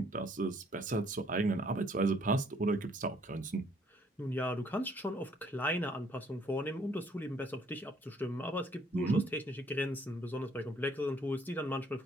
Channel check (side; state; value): both; normal; correlation 0.64